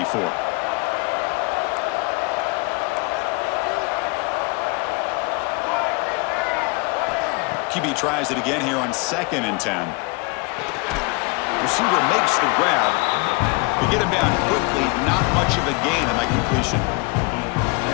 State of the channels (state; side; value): quieter; right; 27.5 dB